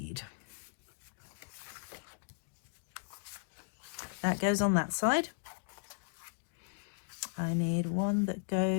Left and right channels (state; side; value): silent; right; digital silence